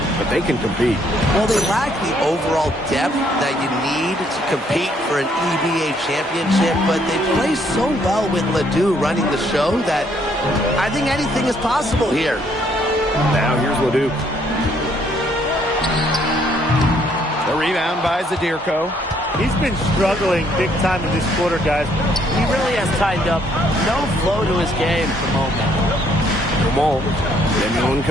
but they can compete. Well, they lack the overall depth that you need to compete for an EBA championship, but they play so well with LeDuc running the show that I think anything is possible here. Now here's LeDuc. The rebound by Zadirko. He's been struggling big time in this quarter, guys. He really has tightened up. No flow to his game at the moment. Dumal. Lemieux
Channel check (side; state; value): both; normal; correlation 0.68